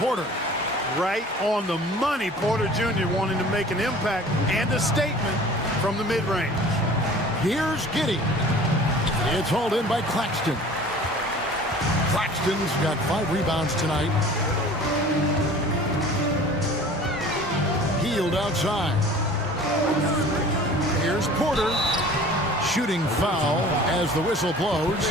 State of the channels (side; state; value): both; normal; correlation 0.45